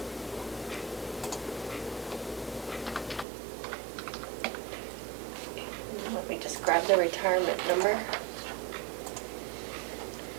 Let me just grab the retirement number.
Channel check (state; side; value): drops out; left; at 3.2 s